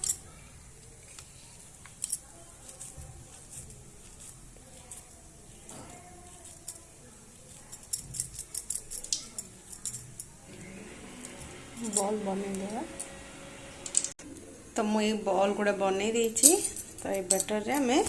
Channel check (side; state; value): both; identical; correlation 1.00